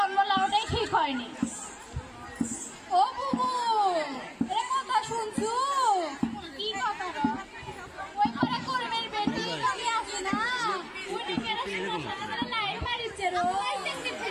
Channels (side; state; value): both; identical; correlation 1.00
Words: লাউটাই ঠিক হয়নি ও বুবু এ কথা শুনছু কি কথা ওই ঘরে কর্মের বেটি কবি আছে না উনি কেন সারা লাইন মারিছে রো